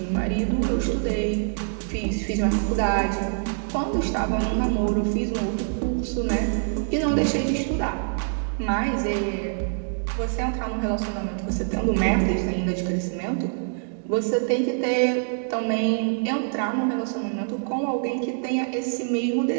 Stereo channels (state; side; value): silent; left; digital silence